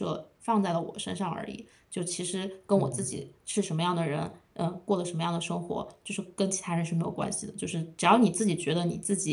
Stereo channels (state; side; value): identical; both; correlation 1.00